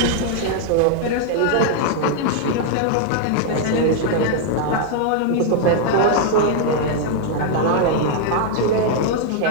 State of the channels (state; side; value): different; both; correlation 0.00